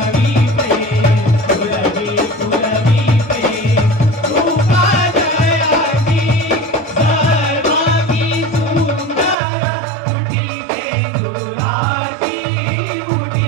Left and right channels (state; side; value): drops out; left; at 9.3 s